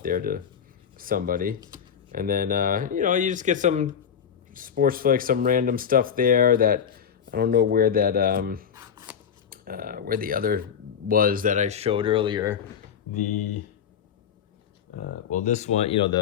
there to somebody. And then you know, you just get some sports flicks, some random stuff there that I don't know where that where the other was that I showed earlier. The well, this one, you know,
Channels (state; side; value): quieter; right; 7.7 dB